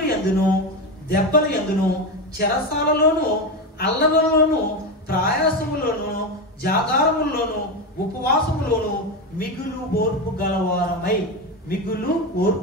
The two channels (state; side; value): normal; both; correlation 0.16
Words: యందును, దెబ్బల యందును, చెరసాలలోను, అల్లలలోను, ప్రయాసములోను, జాగారములోను, ఉపవాసములోను మిగులు ఓర్పు గలవారమై, మిగులు